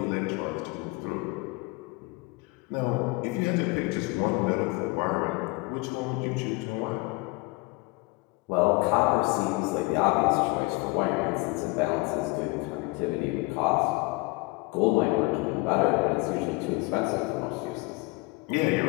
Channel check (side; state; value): right; quieter; 25.4 dB